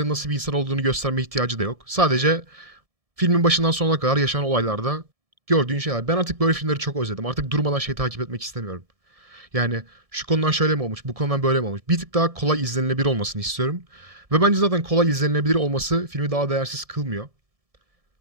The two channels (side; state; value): left; late; 1.7 ms